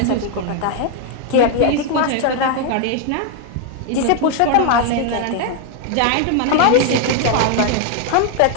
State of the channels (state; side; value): different; both; correlation 0.01